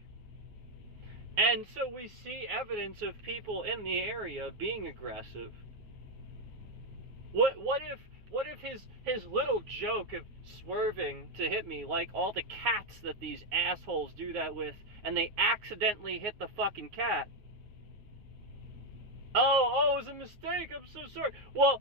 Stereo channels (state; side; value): late; left; 9.6 ms